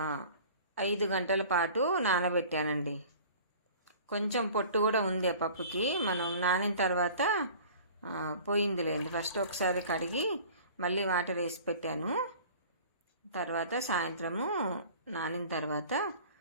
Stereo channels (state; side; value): inverted; both; correlation -0.45